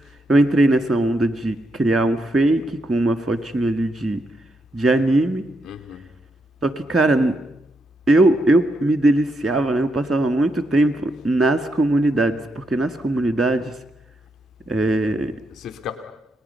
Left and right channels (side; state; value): both; normal; correlation 0.81